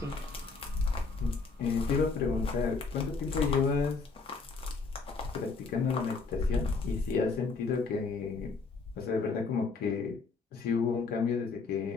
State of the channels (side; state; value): right; quieter; 4.4 dB